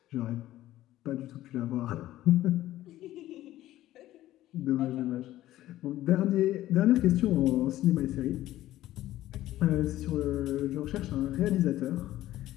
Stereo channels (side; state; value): right; quieter; 14.6 dB